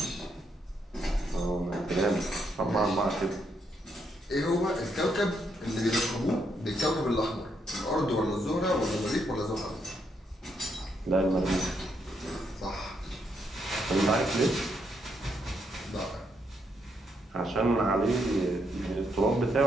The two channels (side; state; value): both; normal; correlation 0.77